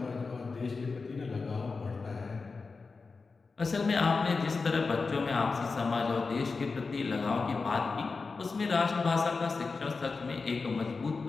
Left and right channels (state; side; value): quieter; right; 4.3 dB